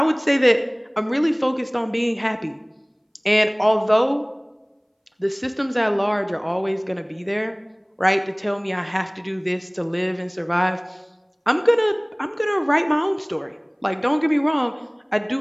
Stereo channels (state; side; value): identical; both; correlation 1.00